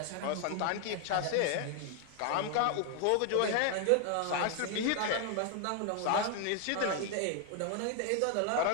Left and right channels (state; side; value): different; both; correlation 0.00